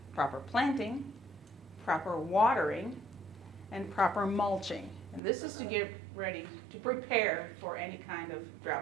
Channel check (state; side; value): drops out; left; at 5.2 s